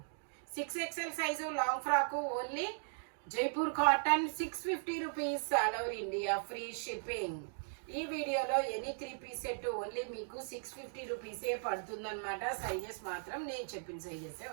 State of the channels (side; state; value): left; silent; digital silence